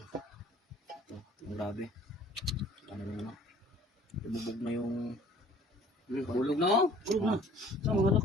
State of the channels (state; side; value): normal; both; correlation 0.53